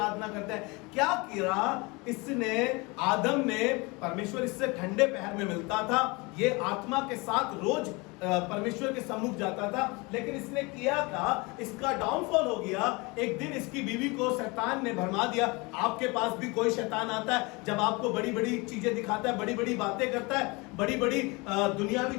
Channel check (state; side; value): quieter; right; 26.4 dB